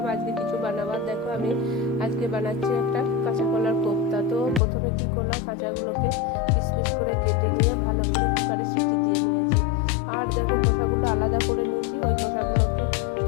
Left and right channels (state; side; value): drops out; right; at 4.6 s